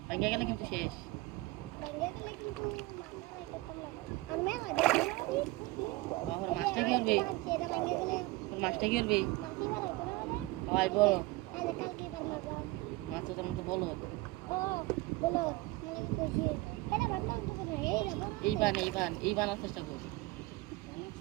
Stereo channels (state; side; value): quieter; left; 20.9 dB